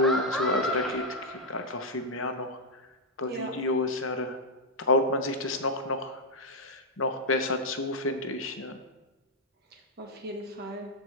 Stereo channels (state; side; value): normal; both; correlation -0.03